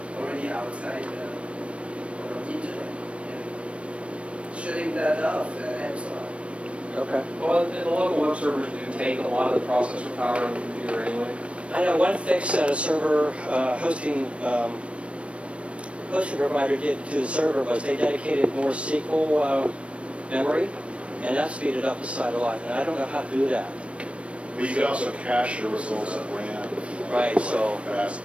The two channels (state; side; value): late; left; 0.061 ms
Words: already outside of the internet. And shutting that off helps a lot. Okay. Well, and the local web servers do take a lot of the processor power on the computer anyway. I know one fix that a server hosting provider did to the server was they dedicated more SQL memory, and that speeded up the site a lot. And I don't know how to do that. But you can also cache your results at RAM. Right, so- Fast.